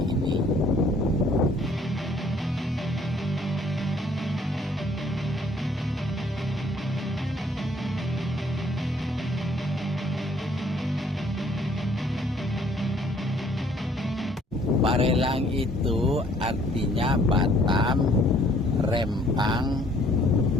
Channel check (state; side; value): normal; both; correlation 0.61